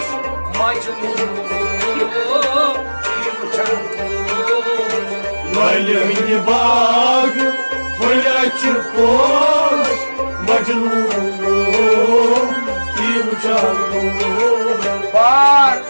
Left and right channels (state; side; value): inverted; both; correlation -1.00